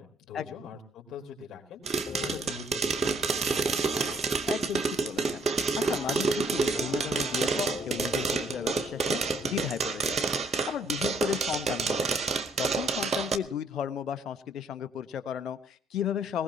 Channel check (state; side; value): normal; both; correlation 0.65